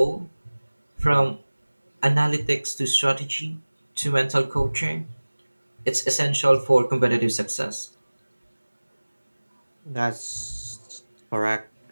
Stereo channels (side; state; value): both; inverted; correlation -1.00